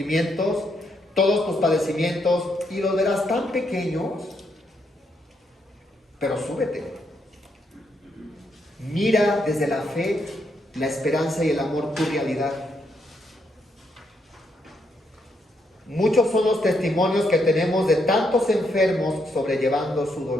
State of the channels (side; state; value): both; normal; correlation 0.77